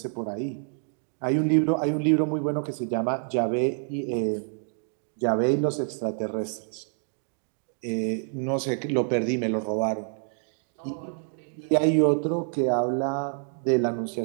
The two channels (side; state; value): left; silent; 57 dB below the other